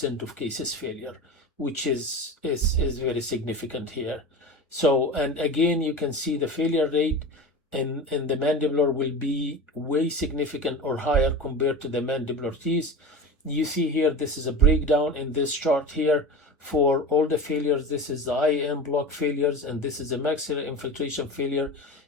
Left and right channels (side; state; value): both; normal; correlation 0.29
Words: of cases failure, which is very significant here. So, and again, you can see the failure rate in the mandibular will be way significant or higher compared to the mandibular teeth. You see here, this is a breakdown in this chart here for all the failures. This is the IAN block failures, and this is the maxillary infiltration failure.